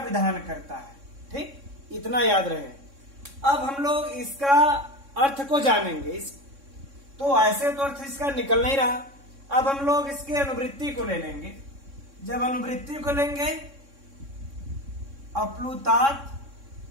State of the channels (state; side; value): late; left; 3.6 ms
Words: करता है, ठीक, इतना याद रहे। अब हम लोग इसका अर्थ को जानेंगे। तो ऐसे तो अर्थ इसका निकल नहीं रहा। अब हम लोग इसके अनुवृत्ति को ले लेंगे। जब अनुवृत्ति को लेंगे अप्लुतात